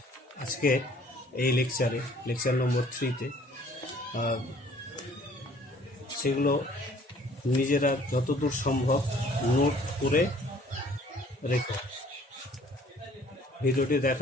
আজকে এই লেকচার নম্বর 3-তে, সেগুলো নিজেরা যতদূর সম্ভব নোট করে রেখো। ভিডিওটি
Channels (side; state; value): both; normal; correlation 0.56